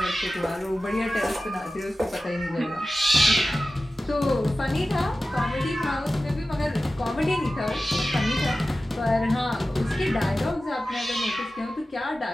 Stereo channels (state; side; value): normal; both; correlation 0.95